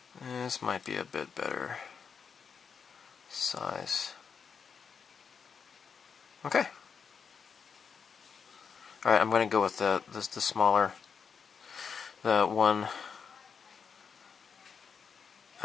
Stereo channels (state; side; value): quieter; right; 6.3 dB